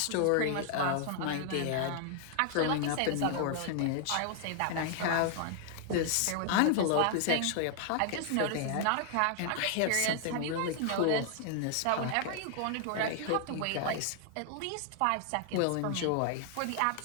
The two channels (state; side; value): different; both; correlation 0.00